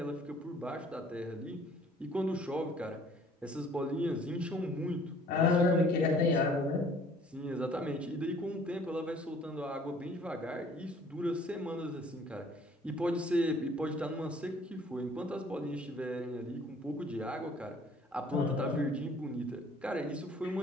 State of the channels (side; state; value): both; normal; correlation 0.56